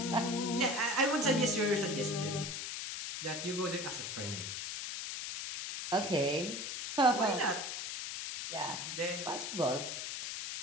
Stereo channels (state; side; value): noise; left; hiss, 5 dB below the sound